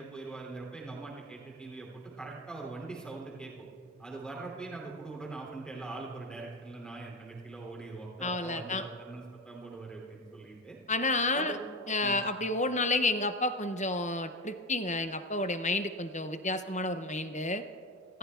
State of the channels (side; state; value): both; normal; correlation 0.22